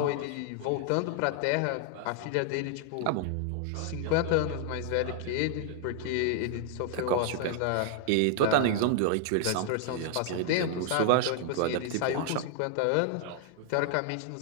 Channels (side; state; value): both; different; correlation 0.00